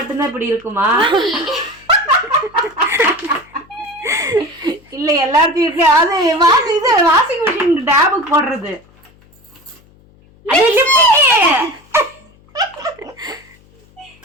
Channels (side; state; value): left; noise; hum, 29 dB below the sound